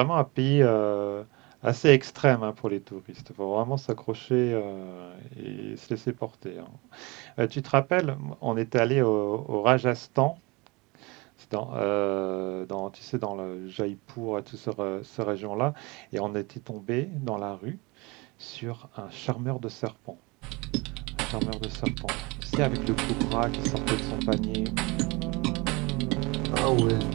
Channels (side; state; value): left; quieter; 25.5 dB